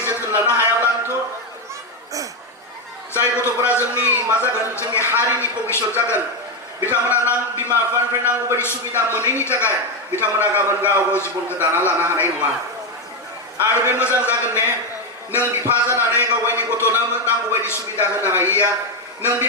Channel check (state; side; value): normal; both; correlation 0.08